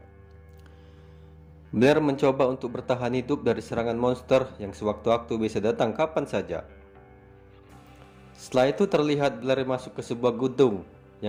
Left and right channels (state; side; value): identical; both; correlation 1.00